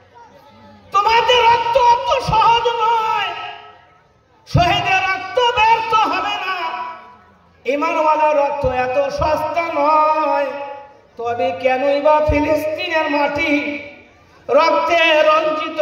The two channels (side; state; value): both; identical; correlation 1.00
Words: তোমাদের রক্ত অত সহজ নয়, শহীদের রক্ত ব্যর্থ হবে না, ঈমানওয়ালা রক্ত এত সস্তা নয়। তবে কেনই বা ফিলিস্তিনের মাটি রক্তে রঞ্জিত